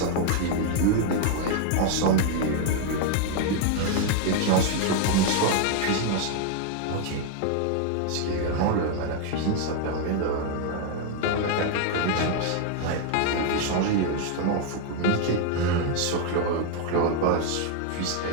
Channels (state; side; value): different; both; correlation 0.00